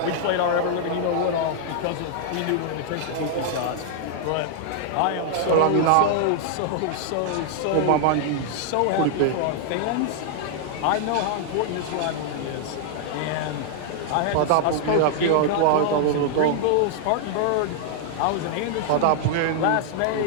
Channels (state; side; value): different; both; correlation -0.01